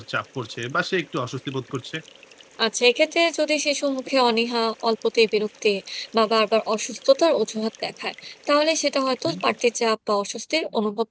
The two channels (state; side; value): identical; both; correlation 1.00